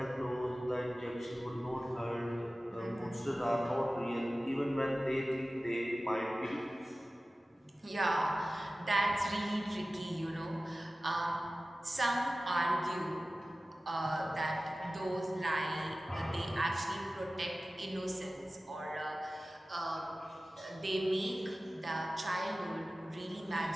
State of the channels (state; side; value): normal; both; correlation 0.96